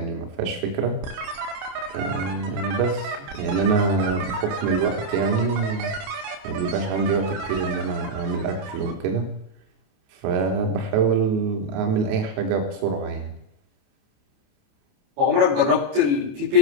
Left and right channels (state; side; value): late; left; 28 ms